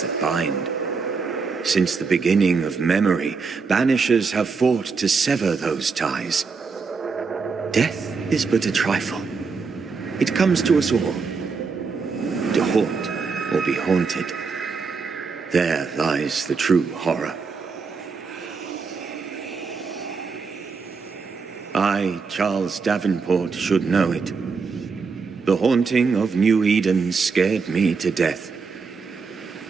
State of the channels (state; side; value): quieter; left; 4.9 dB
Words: that bind. Since the beginning of memory, banishers have fought to sever those ties. Death is but a trifle. It comes to us all. To haunt or be haunted. There lies the true horror. I, Charles Davenport, should know it. The haunting of New Eden scared me to death.